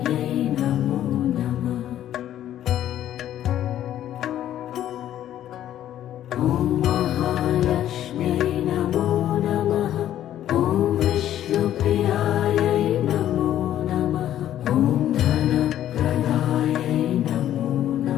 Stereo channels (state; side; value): quieter; right; 11.8 dB